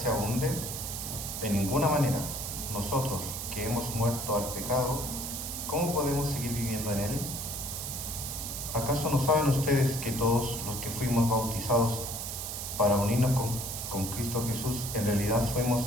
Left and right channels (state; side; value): noise; right; hiss, 5 dB below the sound